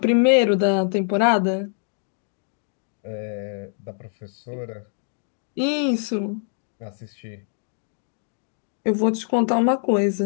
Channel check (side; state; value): right; silent; 62 dB below the other